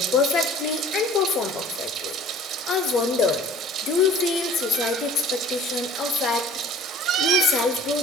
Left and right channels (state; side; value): normal; both; correlation 0.48